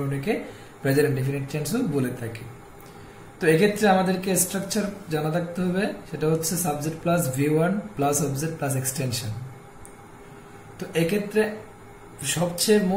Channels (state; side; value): identical; both; correlation 1.00